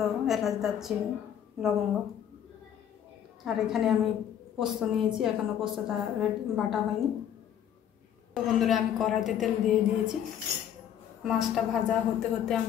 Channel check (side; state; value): right; quieter; 9.7 dB